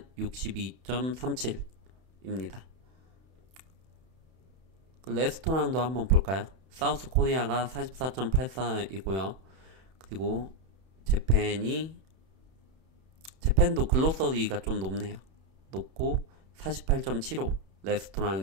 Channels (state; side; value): late; left; 31 ms